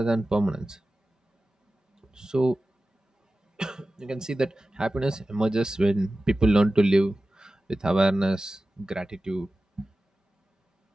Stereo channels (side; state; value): both; normal; correlation 0.95